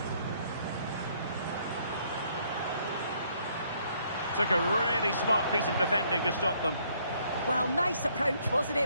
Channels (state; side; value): inverted; both; correlation -0.67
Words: Took a really smart piece of defending to stop them. Well, nice approach, wasn't